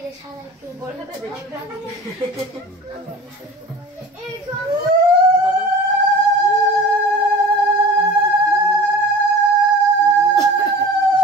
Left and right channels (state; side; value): normal; both; correlation 0.39